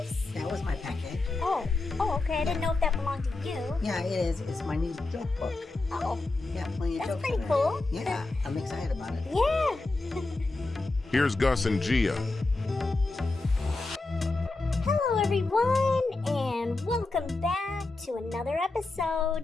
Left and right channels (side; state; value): right; quieter; 3.3 dB